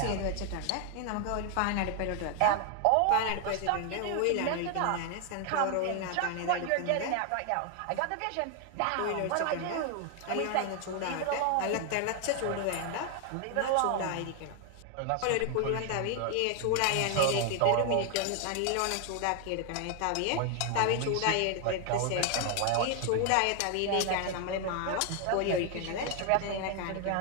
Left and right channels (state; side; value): different; both; correlation 0.00